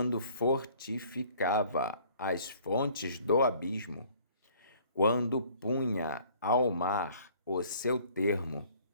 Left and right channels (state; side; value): inverted; both; correlation -0.56